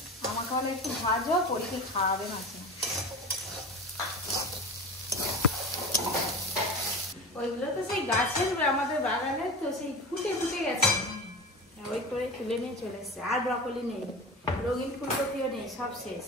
আমাকে হলে একটু ভাজো, পরীকে খাওয়াবে মাসিমা। ওইগুলো তো সেই গাছের, আমাদের বাগানের তো সেই ফুটে ফুটে গেছে, ওই করে তুলে নিয়ে চলে এসছে। আর ব্রকলি নেই, রঙিন ফুলকপিও নেই, সব শেষ।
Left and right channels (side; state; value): both; normal; correlation 0.31